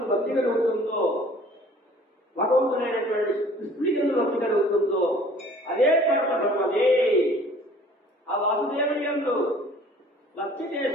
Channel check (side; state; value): both; normal; correlation 0.52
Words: భక్తి కలుగుతుందో, భగవంతుడైనటువంటి కృష్ణుని భక్తి కలుగుతుందో అదే పరమధర్మమే. ఆ వాసుదేవుని యందు భక్తి